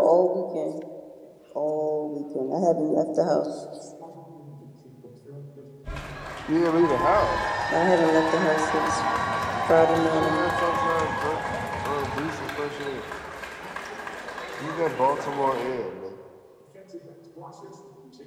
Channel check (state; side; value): identical; both; correlation 1.00